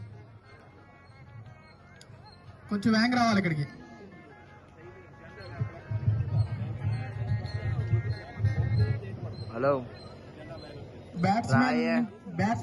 కొంచెం వ్యాంగ్ రావాలి ఇక్కడికి. హలో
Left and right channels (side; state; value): both; identical; correlation 1.00